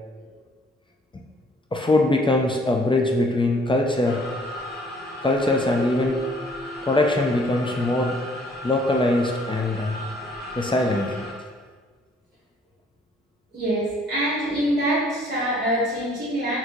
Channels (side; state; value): both; normal; correlation 0.60